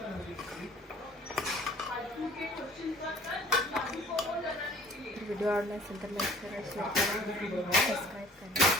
व्हिडिओ आवडला असेल तर लाईक करा, शेअर करा, सबस्क्राईब करा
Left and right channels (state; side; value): normal; both; correlation 0.52